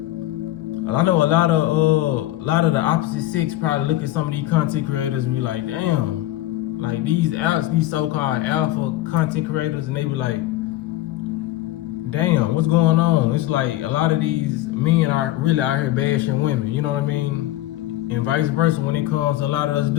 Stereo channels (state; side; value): quieter; right; 15.5 dB